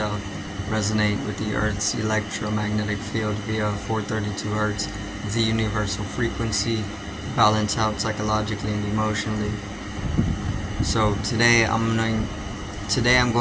Resonate with the Earth's electromagnetic field via 432 Hz, the universal frequency. Balance out psychologically and emotionally. So today I'm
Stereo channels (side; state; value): both; identical; correlation 1.00